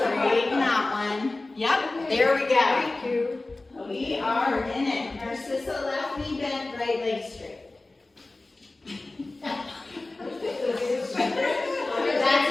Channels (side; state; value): right; quieter; 3.1 dB